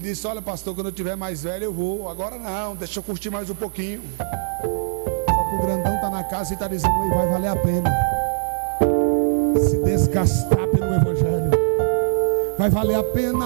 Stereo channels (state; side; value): silent; left; digital silence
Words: olha, pastor, quando eu tiver mais velho eu vou. Agora não, deixa eu curtir mais um pouquinho. Só que o grandão está na casa e está dizendo: vai valer a pena se desgastar pelo evangelho. Vai valer a